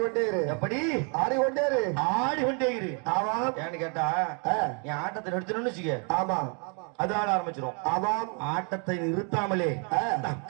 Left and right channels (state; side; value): quieter; left; 38.0 dB